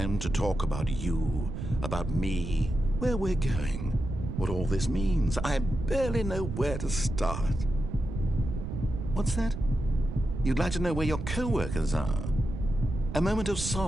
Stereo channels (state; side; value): noise; right; rumble, 6 dB below the sound